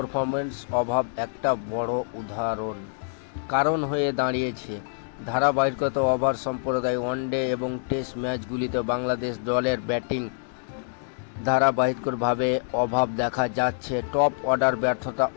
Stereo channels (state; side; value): silent; right; digital silence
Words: অভাব একটা বড় কারণ হয়ে দাঁড়িয়েছে। ধারাবাহিকতা ওভার সম্প্রদায় ওয়ানডে এবং টেস্ট ম্যাচগুলিতে বাংলাদেশ দলের ব্যাটিং ধারাবাহিকভাবে অভাব দেখা যাচ্ছে। টপ অর্ডার ব্যর্থতা,